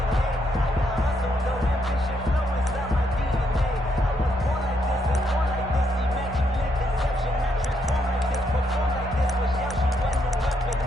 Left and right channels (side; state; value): both; normal; correlation 0.76